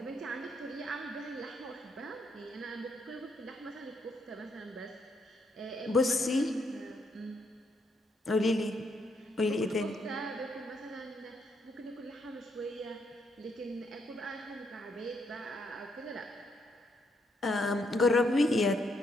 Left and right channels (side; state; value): both; normal; correlation 0.75